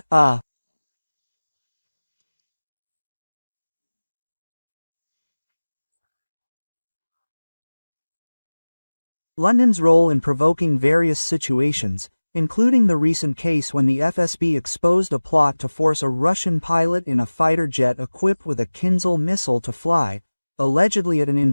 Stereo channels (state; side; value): inverted; both; correlation -1.00